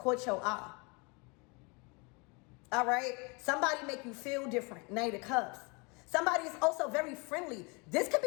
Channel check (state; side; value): quieter; right; 30.0 dB